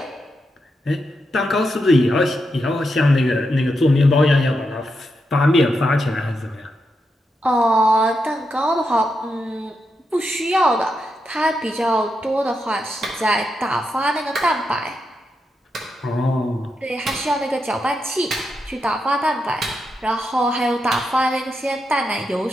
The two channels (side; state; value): both; normal; correlation 0.85